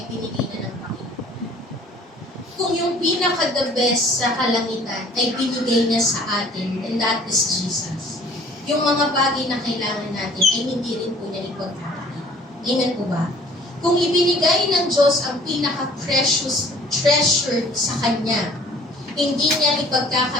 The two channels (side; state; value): both; normal; correlation 0.53